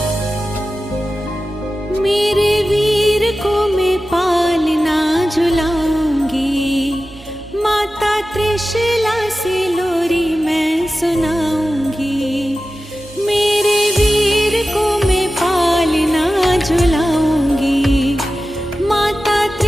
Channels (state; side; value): normal; both; correlation 0.94